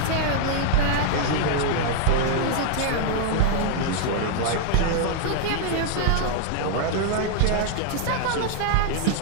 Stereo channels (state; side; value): different; both; correlation 0.00